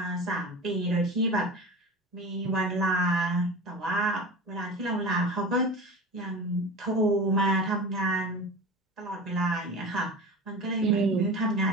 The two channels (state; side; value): normal; both; correlation 0.32